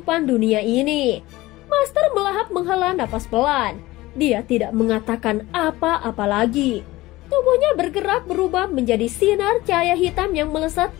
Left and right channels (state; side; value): quieter; right; 18.7 dB